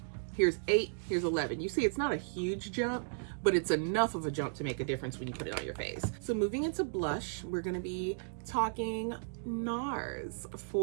Here's 8, here's 11. You see, it's not a huge jump, but it's enough of a jump to make a difference when you put it on your face. So moving into blush, we're gonna be talking Nars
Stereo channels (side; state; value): left; silent; digital silence